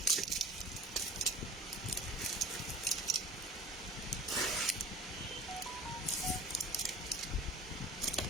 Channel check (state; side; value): normal; both; correlation 0.41